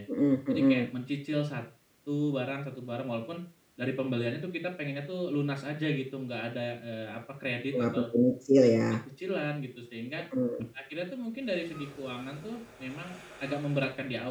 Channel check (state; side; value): identical; both; correlation 1.00